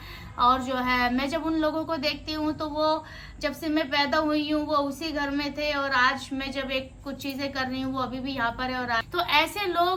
और जो है मैं जब उन लोगों को देखती हूँ तो वो जब से मैं पैदा हुई हूँ वो उसी घर में थे, और आज मैं जब कुछ चीजें कर रही हूँ वो अभी भी यहाँ पर है। और तो ऐसे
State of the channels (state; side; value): identical; both; correlation 1.00